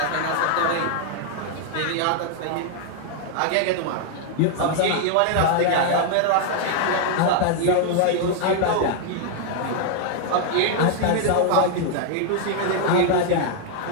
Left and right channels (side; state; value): both; different; correlation 0.00